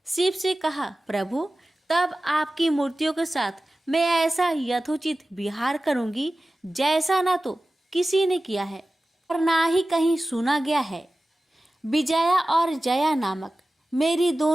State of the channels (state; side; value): normal; both; correlation 0.96